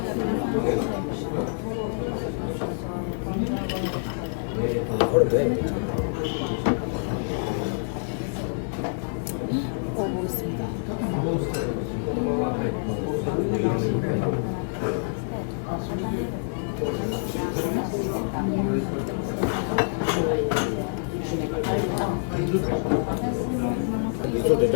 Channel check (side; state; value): right; silent; digital silence